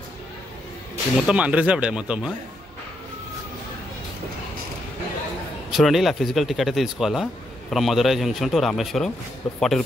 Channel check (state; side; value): normal; both; correlation 0.79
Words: అన్రిజర్వ్డే మొత్తం. చూడండి, ఇలా ఫిజికల్ టికెట్ అయితే తీసుకోవాలా from Madurai junction to Rameswaram. 40